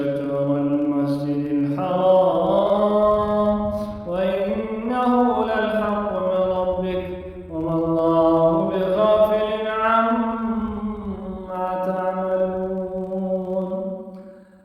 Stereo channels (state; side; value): identical; both; correlation 1.00